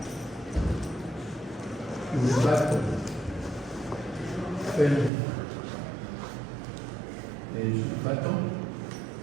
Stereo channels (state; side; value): drops out; left; at 5.1 s